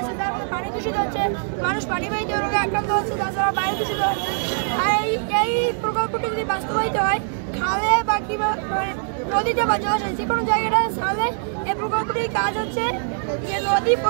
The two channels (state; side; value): silent; left; 63 dB below the other